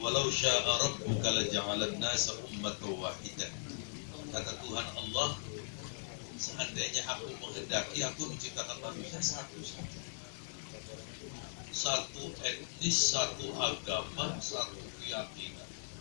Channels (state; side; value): silent; right; digital silence